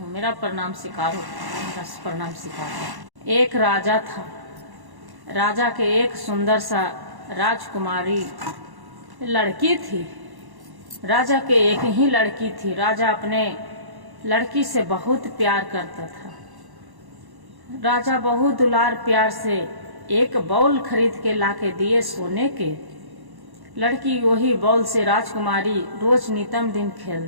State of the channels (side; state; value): left; late; 1.1 ms